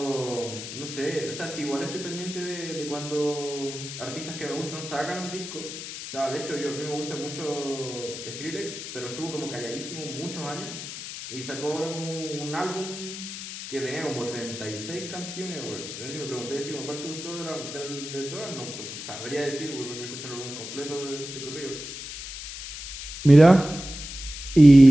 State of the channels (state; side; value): noise; left; hiss, 9 dB below the sound